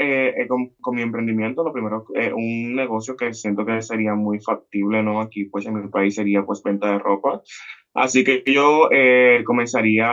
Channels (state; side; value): identical; both; correlation 1.00